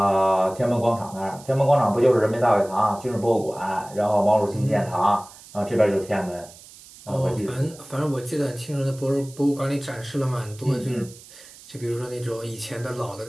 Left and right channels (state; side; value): noise; right; hiss, 20 dB below the sound